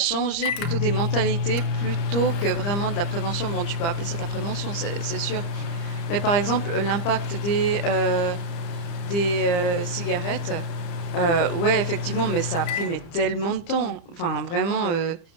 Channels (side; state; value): right; late; 30 ms